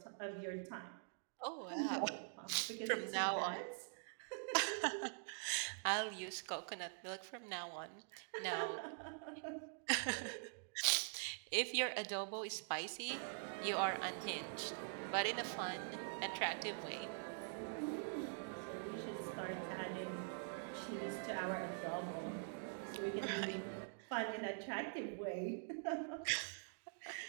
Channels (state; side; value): silent; left; digital silence